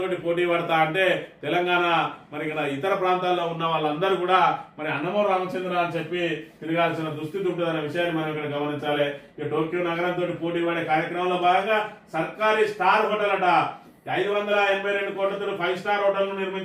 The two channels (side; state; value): both; identical; correlation 1.00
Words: పోటీ పడతా అంటే తెలంగాణ మరి ఇక్కడ ఇతర ప్రాంతాల్లో ఉన్న వాళ్ళందరూ కూడా మరి అన్నమూరు రామచంద్ర అని చెప్పి తిరగాల్సిన దుస్థితి ఉంటుందనే విషయాన్ని మనం ఇక్కడ గమనించాలి. ఇక టోక్యో నగరంతో పోటీ పడే కార్యక్రమంలో భాగంగా సర్కారీ స్టార్ హోటల్ అట 582 కోట్లతో 5 స్టార్ హోటల్ ను